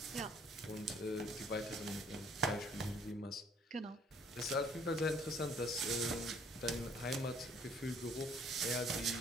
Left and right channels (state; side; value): normal; both; correlation 0.60